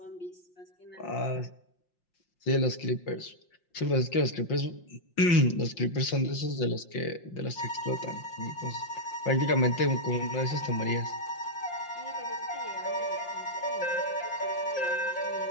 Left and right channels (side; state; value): right; late; 5.7 ms